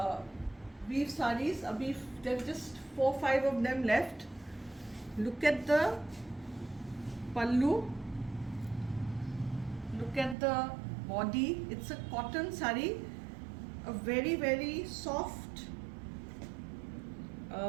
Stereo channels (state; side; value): drops out; left; at 10.4 s